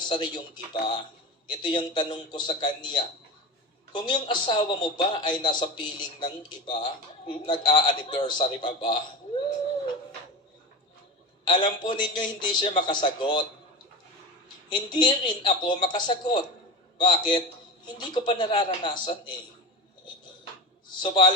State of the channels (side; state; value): both; normal; correlation 0.24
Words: yung iba. Ito yung tanong ko sa kanya, Kung yung asawa mo ba ay nasa piling ng iba, nag-a-anniversary pa ba? Alam po ninyo, hindi siya makasagot. Hindi rin ako makasagot. Bakit? Hindi ko pa nararanasan eh.